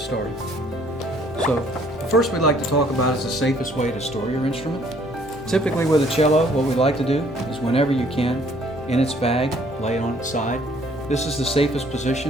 So the first we'd like to talk about is the safest way to store your instrument. Typically with a cello, what we like to do is whenever you can, in its bag, lay it on its side. This is the safest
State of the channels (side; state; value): both; normal; correlation 0.61